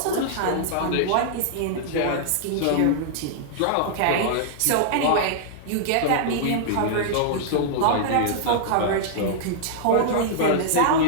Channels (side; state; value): both; different; correlation -0.02